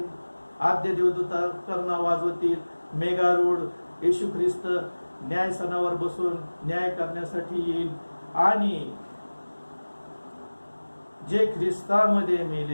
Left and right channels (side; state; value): both; inverted; correlation -1.00